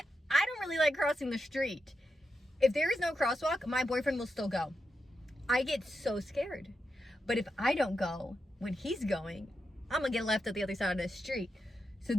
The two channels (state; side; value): normal; both; correlation 0.87